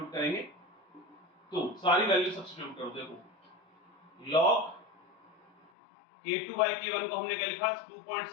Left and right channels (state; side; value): drops out; right; at 5.7 s